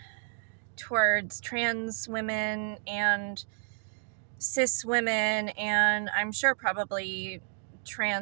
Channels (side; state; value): left; silent; digital silence